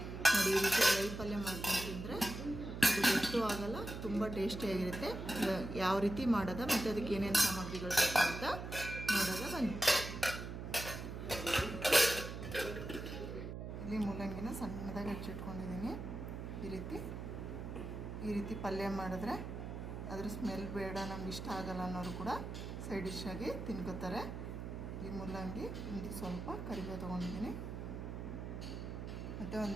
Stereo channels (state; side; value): noise; right; hum, 7 dB below the sound